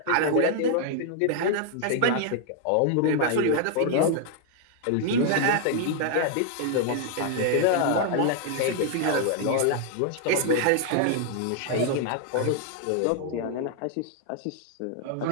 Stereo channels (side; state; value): both; different; correlation 0.00